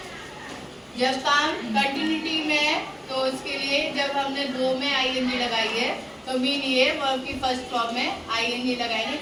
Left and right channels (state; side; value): identical; both; correlation 1.00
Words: जब काम कंटिन्यूटी में है तो उसके लिए जब हमने दो में आईएनजी लगाई है तो मीन ये वर्ब की फर्स्ट फॉर्म में आईएनजी लगाएंगे,